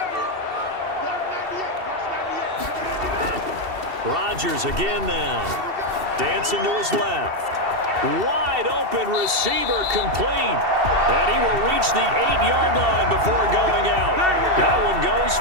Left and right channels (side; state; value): left; late; 2.7 ms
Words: Rodgers again now. Dancing to his left. Wide open receiver complete. And he will reach the 8-yard line before going out. That one goes